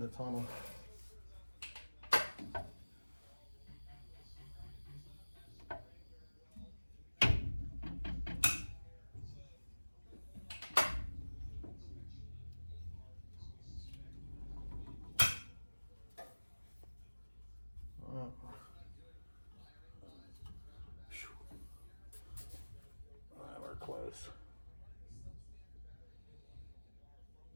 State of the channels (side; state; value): both; inverted; correlation -1.00